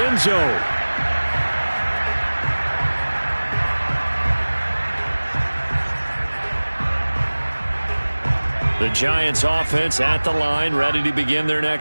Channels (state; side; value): inverted; both; correlation -1.00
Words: zone. The Giants offense at the line, ready to begin their